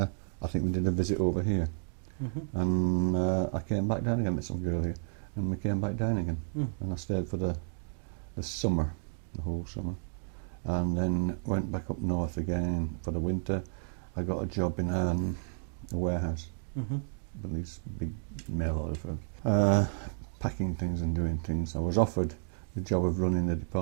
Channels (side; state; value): left; silent; 57 dB below the other